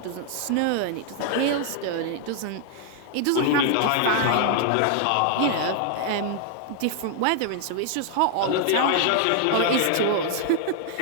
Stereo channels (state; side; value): different; both; correlation 0.00